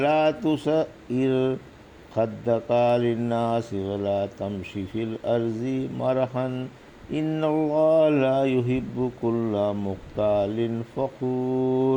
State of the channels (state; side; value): identical; both; correlation 1.00